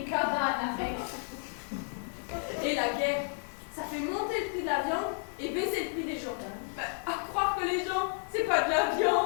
cabanes avec. Et la guerre, ça fait monter le prix de la viande et baisser le prix des gens. Bah, à croire que les gens, c'est pas de la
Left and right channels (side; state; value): right; silent; 57 dB below the other